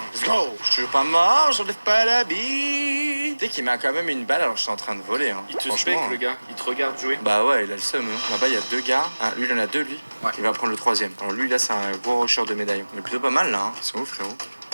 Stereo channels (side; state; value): both; inverted; correlation -1.00